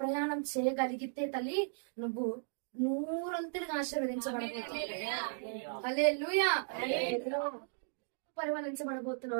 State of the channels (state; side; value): silent; left; digital silence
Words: ప్రయాణం చేయగలిగితే తల్లి నువ్వు నూరంతులుగా ఆశీర్వదించబడబోతున్నావు. హల్లెలూయా.